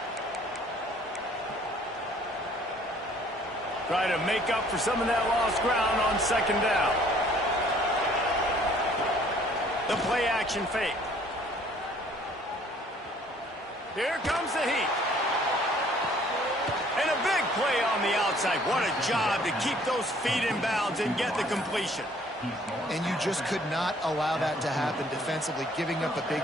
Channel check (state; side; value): normal; both; correlation 0.58